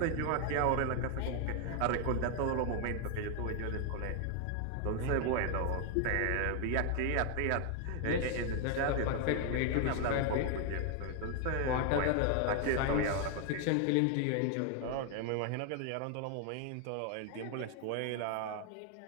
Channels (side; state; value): both; different; correlation 0.00